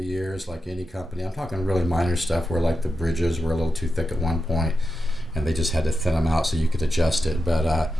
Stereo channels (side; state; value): both; normal; correlation 0.89